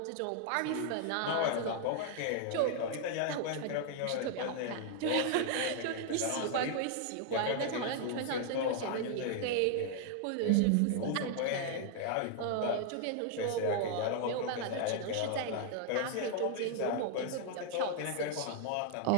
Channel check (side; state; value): both; different; correlation 0.00